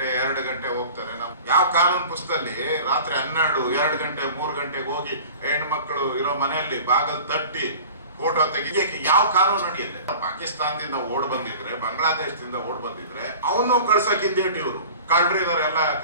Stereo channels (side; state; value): both; inverted; correlation -0.41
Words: 2 ಗಂಟೆ ಹೋಗ್ತಾರೆ. ನಾವು ಯಾವ ಕಾನೂನು ಪುಸ್ತಕದಲ್ಲಿ ರಾತ್ರಿ 12 2 ಗಂಟೆ 3 ಗಂಟೆಗೆ ಹೋಗಿ ಹೆಣ್ಮಕ್ಳು ಇರೋ ಮನೆಯಲ್ಲಿ ಬಾಗಿಲು ತಟ್ಟಿ ಫೋಟೋ ತೆಗಿಯಕ್ಕೆ ಯಾವ ಕಾನೂನು ನಡೆಯುತ್ತೆ? ಪಾಕಿಸ್ತಾನದಿಂದ ಓಡ್ ಬಂದಿದ್ರೆ, ಬಾಂಗ್ಲಾದೇಶದಿಂದ ಓಡ್ ಬಂದಿದ್ರೆ ಅವನು ಕಳ್ಸಕ್ಕಿಂದೇಟ್ ಇವರು ಕಳ್ರಿ ಇದಾರೆ ಎಲ್ಲ